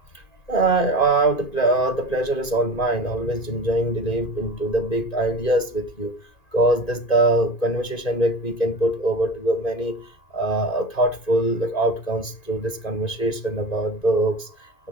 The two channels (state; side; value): late; right; 2.5 ms